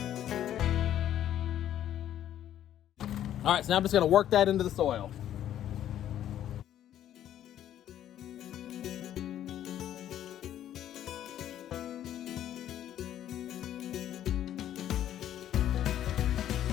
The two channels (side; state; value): right; quieter; 11.3 dB